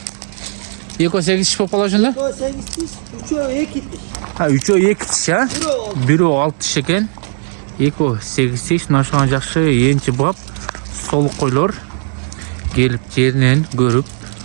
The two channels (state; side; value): silent; left; 69 dB below the other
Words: 2-8 tiş болып қала жөнді? 2-8 tiş, 3-2 tiş. Ha 3-2 tiş ha? 1-6 tiş eкен. 2-8 tiş. Naşıған жақшы енчі бап. Солық қойлар. Келіп жерінен көріп.